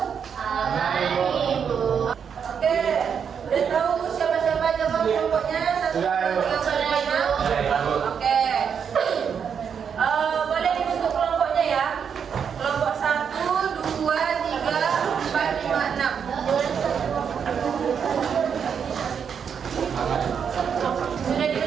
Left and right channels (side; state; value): left; quieter; 7.2 dB